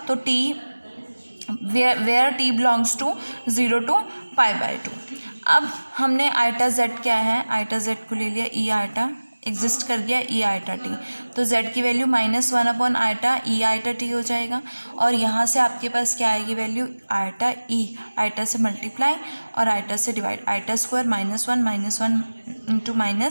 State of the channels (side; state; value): both; inverted; correlation -1.00